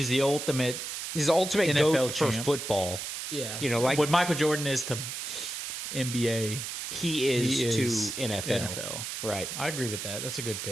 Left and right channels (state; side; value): noise; right; hiss, 5 dB below the sound